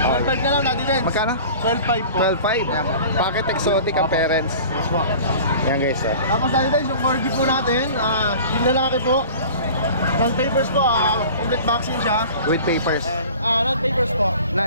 12.5 na lang natin din. Magkano? 12.5 po. 12.5. Packet exotic ang parents. Yes po. Yan guys, Tapos natin din yung corgi po natin. Yung lalaki po. Non-papers po, complete vaccine siya. With papers. Non-papers po.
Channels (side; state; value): both; inverted; correlation -0.42